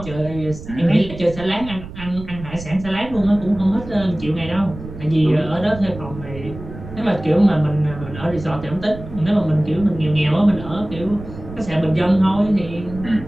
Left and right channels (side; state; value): right; noise; rumble, 13 dB below the sound